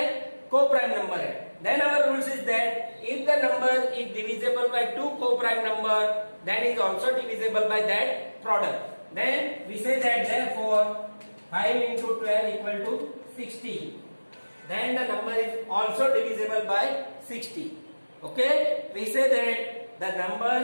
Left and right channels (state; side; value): inverted; both; correlation -1.00